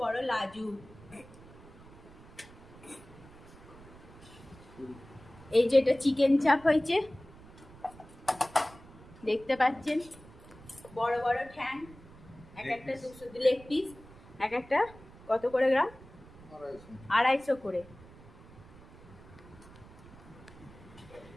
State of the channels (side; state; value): right; noise; rumble, 20 dB below the sound